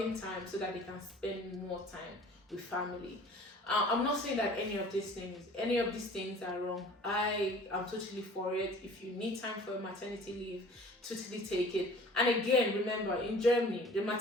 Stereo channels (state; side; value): normal; both; correlation 0.48